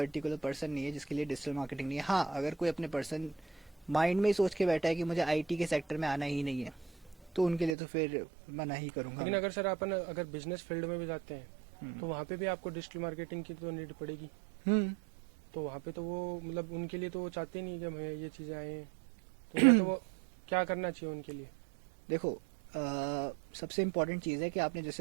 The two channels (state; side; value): drops out; left; at 7.8 s